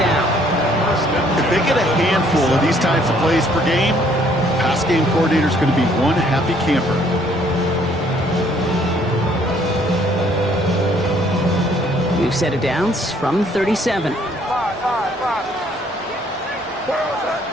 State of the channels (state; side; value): normal; both; correlation 0.63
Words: If they get a handful of these types of plays per game, pass game coordinator is going to be one happy camper. We've set it downs from 37.